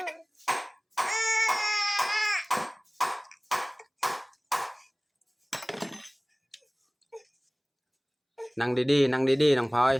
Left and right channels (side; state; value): both; identical; correlation 1.00